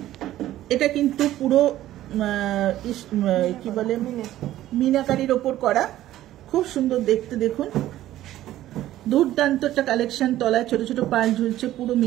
এটা কিন্তু পুরো কি বলে, মিনাকারির ওপর করা, খুব সুন্দর দেখতে। দেখুন দুর্দান্ত একটা কালেকশন। তলায় ছোট ছোট পার্ল ঝুলছে, পুরো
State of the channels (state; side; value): quieter; left; 14.0 dB